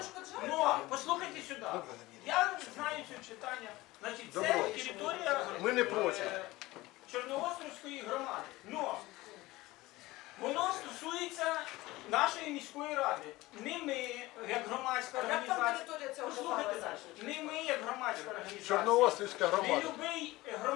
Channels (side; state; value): right; quieter; 19.2 dB